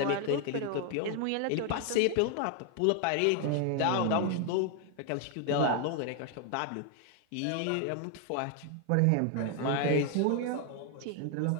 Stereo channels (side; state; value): both; different; correlation 0.00